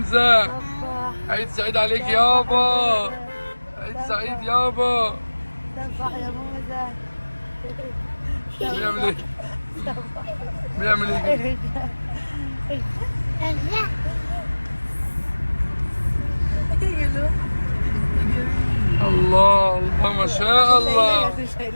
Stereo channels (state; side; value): inverted; both; correlation -1.00